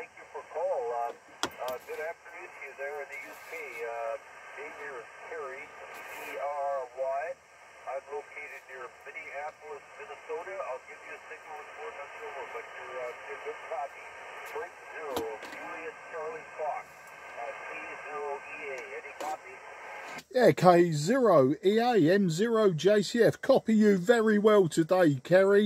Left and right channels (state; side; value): identical; both; correlation 1.00